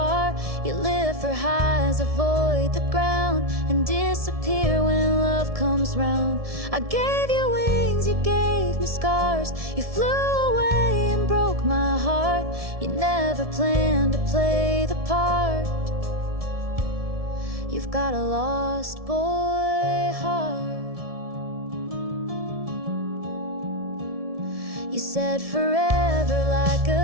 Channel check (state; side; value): late; left; 1.7 ms